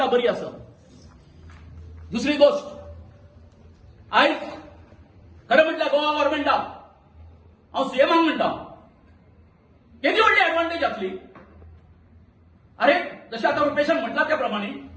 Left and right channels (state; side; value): identical; both; correlation 1.00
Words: बरी आसा. दुसरी गोष्ट आयज खरें म्हटल्यार गोवा गव्हर्नमेंटाक हांव सीएमाक म्हणटा केदी व्हडली एडवांटेज जातली. अरे जशें आतां रुपेशान म्हटला त्या प्रमाणे